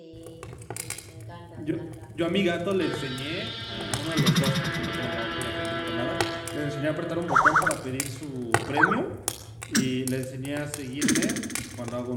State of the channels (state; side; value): identical; both; correlation 1.00